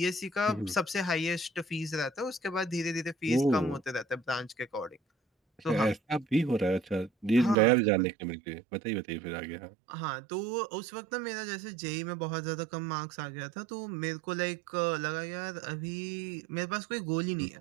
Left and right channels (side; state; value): left; drops out; at 7.6 s